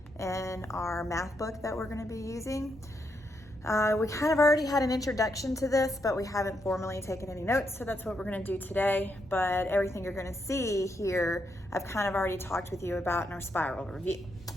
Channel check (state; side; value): normal; both; correlation 0.80